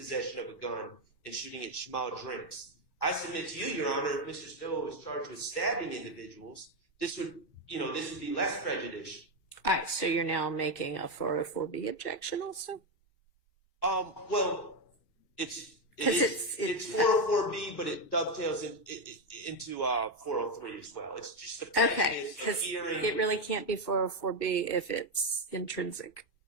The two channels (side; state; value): right; late; 1.2 ms